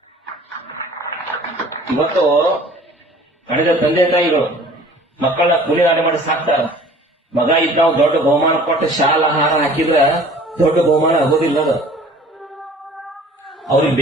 ಇವತ್ತು ಕಳೆದ ತಂದೆ ತಾಯಿಗಳು ಮಕ್ಕಳನ್ನ ಕೂಲಿನಾಡೆ ಮಾಡಿ ಸಾಕ್ತಾರ. ಮಗ ಇದ್ದ ನಾವು ದೊಡ್ಡ ಬಹುಮಾನ ಕೊಟ್ಟು ಶಾಲಾ ಆಹಾರ ಹಾಕಿದ್ರೆ ದೊಡ್ಡ ಬಹುಮಾನ ಆಗೋದಿಲ್ಲ. ಅದು ಅವ್ರಿಗೆ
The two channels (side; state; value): both; normal; correlation 0.49